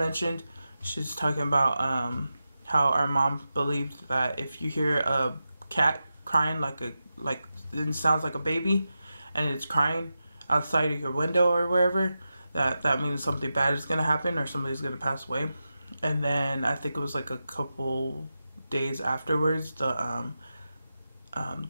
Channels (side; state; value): both; inverted; correlation -0.91